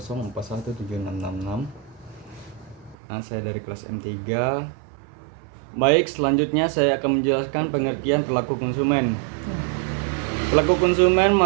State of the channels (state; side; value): drops out; left; at 3.0 s